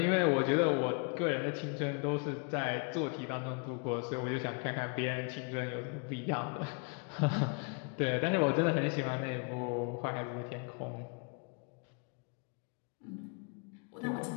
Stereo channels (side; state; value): right; quieter; 33.5 dB